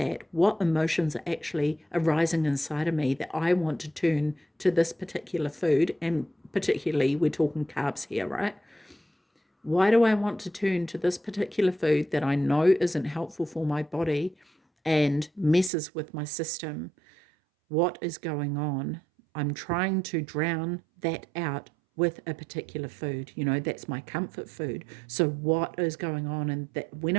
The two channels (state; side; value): drops out; left; at 15.7 s